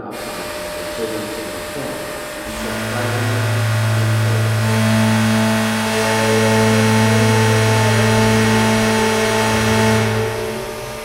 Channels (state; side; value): identical; both; correlation 1.00